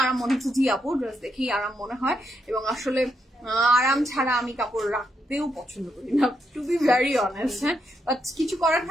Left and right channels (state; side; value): normal; both; correlation 0.79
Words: আরাম মনে হচ্ছে। জি আপু, ড্রেস দেখেই আরাম মনে হয়, এবং আসলে আরাম ছাড়া আমি কাপড় রাখতেও পছন্দ করি না, টু বি ভেরি অনেস্ট। হ্যাঁ, বাট কিছু করার